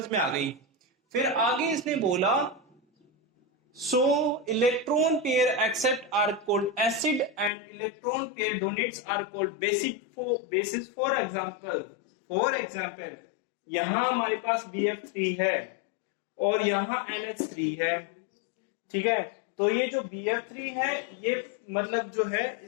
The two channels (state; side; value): drops out; right; at 7.5 s